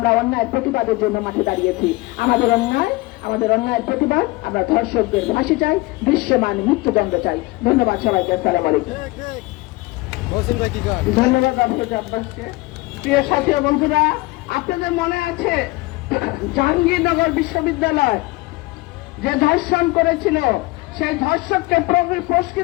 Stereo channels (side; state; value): right; quieter; 22.1 dB